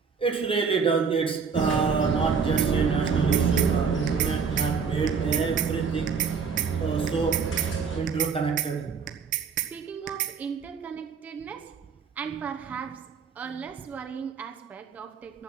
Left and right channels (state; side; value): quieter; left; 5.8 dB